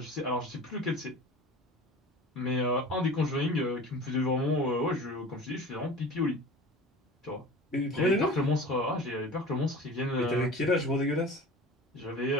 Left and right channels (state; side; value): normal; both; correlation 0.38